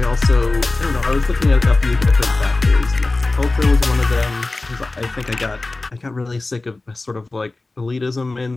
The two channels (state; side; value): quieter; right; 3.2 dB